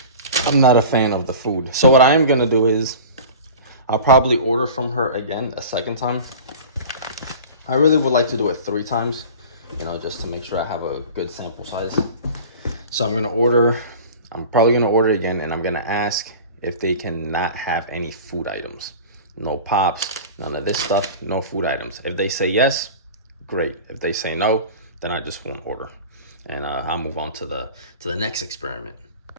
a fan of the food. So what I am gonna do is I'll probably order from her again a second time. I really would like to do it 3 times, you know, just to make sure I have a good sample size. So I'm probably gonna order again, and I'm gonna ask if they cannot have any food items. No pops, none of this stuff, no food items. If they say yes, great. If they say no, then I just won't order. And I'll move on to the next experiment.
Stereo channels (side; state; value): both; inverted; correlation -0.38